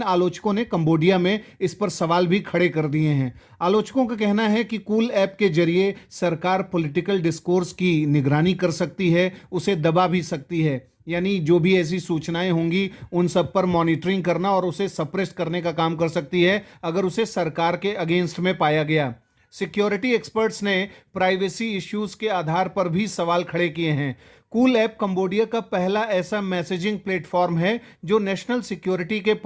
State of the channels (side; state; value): both; identical; correlation 1.00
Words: आलोचकों ने कंबोडिया में इस पर सवाल भी खड़े कर दिए हैं। आलोचकों का कहना है कि कूल ऐप के जरिए सरकार पॉलिटिकल डिस्कोर्स की निगरानी कर सकती है, उसे दबा भी सकती है, यानी जो भी ऐसी सूचनाएं होंगी उन सब पर मॉनिटरिंग करना और उसे सप्रेस करने का काम कर सकती है अगर उसे सरकार के अगेंस्ट में पाया गया। सिक्योरिटी एक्सपर्ट्स ने प्राइवेसी इश्यूज के आधार पर भी सवाल खड़े किए हैं। कूल ऐप कंबोडिया का पहला ऐसा मैसेजिंग प्लेटफॉर्म है जो नेशनल सिक्योरिटी के